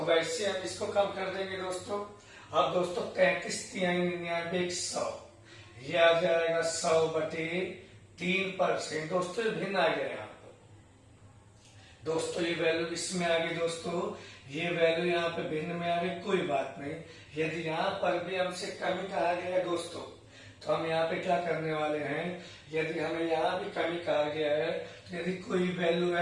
वैसे हम इसको कम कर देंगे दोस्तों। अब दोस्तों 33×99=100, ये आ जाएगा 100/3%। दोस्तों ये भिन्न आ गया यहाँ पर दोस्तों, ये वैल्यू इसमें आ गई दोस्तों, ये वैल्यू यहाँ पे भिन्न में आ गई, कोई बात नहीं। यदि यहाँ पर भी हमसे कमी कहा गया है दोस्तों, तो हम यहाँ पे क्या करने वाले हैं, यदि हमें यहाँ भी कमी कहा गया है, तो यदि कोई वैल्यू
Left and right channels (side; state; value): both; identical; correlation 1.00